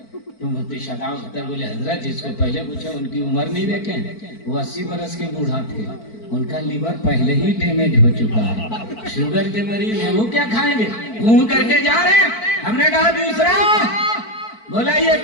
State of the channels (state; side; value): late; right; 4.5 ms